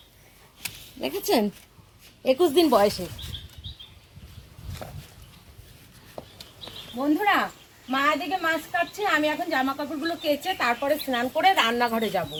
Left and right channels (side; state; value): both; identical; correlation 1.00